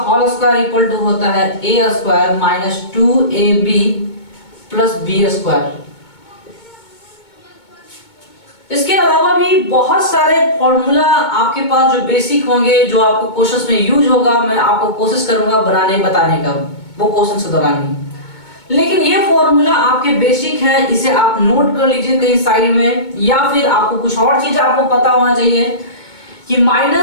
whole square equal to होता है a square minus 2ab plus b square. इसके अलावा भी बहुत सारे फॉर्मूला आपके पास जो बेसिक होंगे, जो आपको क्वेश्चंस में यूज होगा, मैं आपको कोशिश करूंगा बताने का वो क्वेश्चन के दौरान ही। लेकिन ये फॉर्मूला आपके बेसिक है, इसे आप नोट कर लीजिए कहीं साइड में, या फिर आपको कुछ और चीज आपको पता होना चाहिए कि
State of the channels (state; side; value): late; right; 2.2 ms